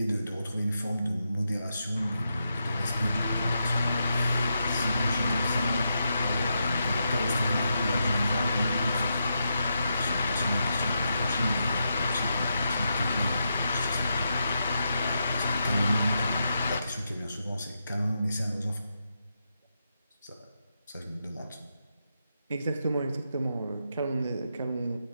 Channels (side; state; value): both; inverted; correlation -0.84